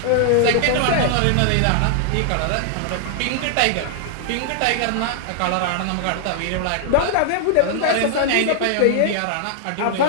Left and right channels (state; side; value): different; both; correlation -0.01